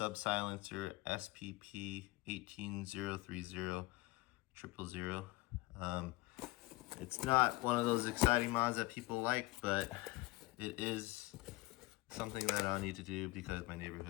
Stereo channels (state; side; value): quieter; right; 20.9 dB